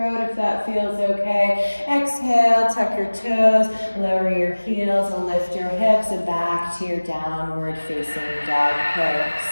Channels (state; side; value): inverted; both; correlation -1.00